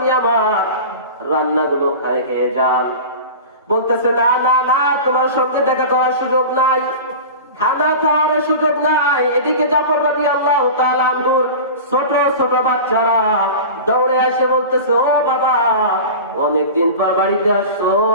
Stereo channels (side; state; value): both; inverted; correlation -0.33